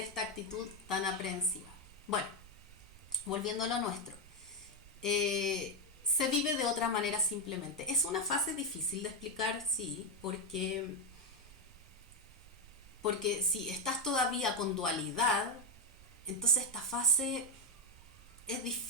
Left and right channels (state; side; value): noise; right; rumble, 21 dB below the sound